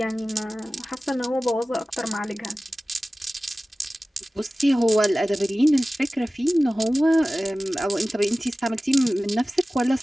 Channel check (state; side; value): normal; both; correlation 0.97